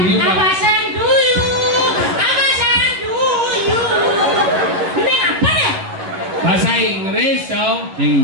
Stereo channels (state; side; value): late; left; 11 ms